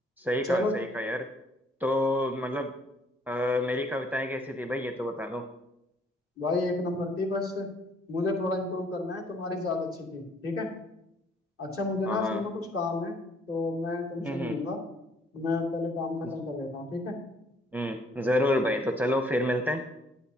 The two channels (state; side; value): normal; both; correlation 0.63